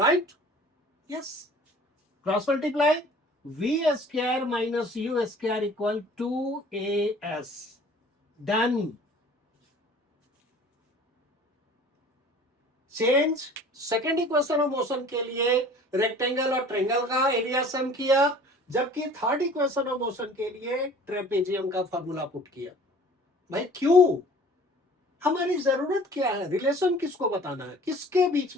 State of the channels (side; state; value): both; normal; correlation 0.48